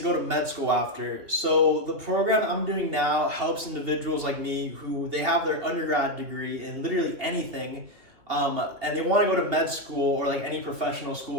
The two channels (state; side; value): late; left; 2.9 ms